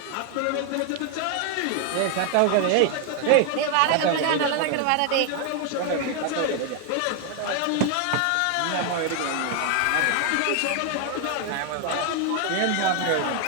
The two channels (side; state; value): both; different; correlation 0.01